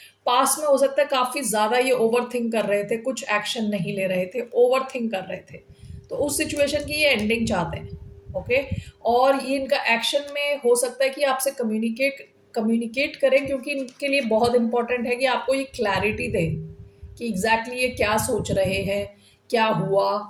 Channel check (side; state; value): both; identical; correlation 1.00